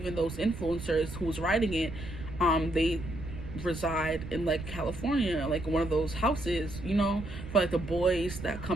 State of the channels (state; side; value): noise; right; rumble, 11 dB below the sound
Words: those influencers who's writing it, they reside in like California, like one of those houses, you know, for like the boys that